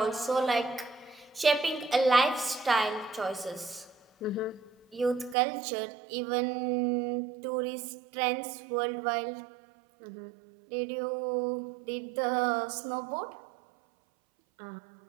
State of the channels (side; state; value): left; drops out; at 5.4 s